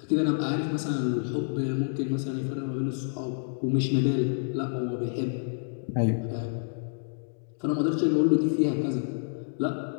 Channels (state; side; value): silent; right; digital silence